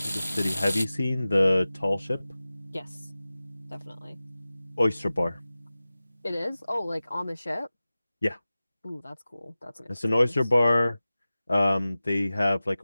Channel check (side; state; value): both; inverted; correlation -0.96